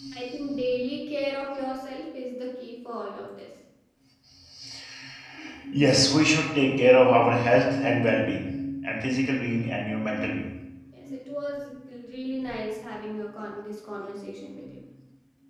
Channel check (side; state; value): both; identical; correlation 1.00